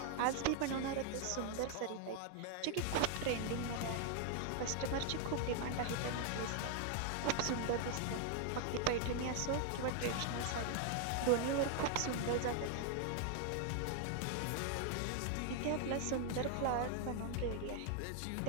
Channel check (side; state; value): both; different; correlation 0.00